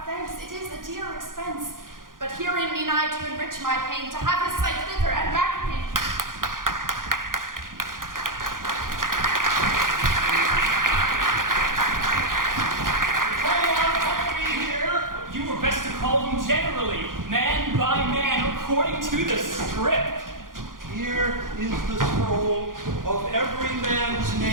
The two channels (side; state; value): left; late; 0.90 ms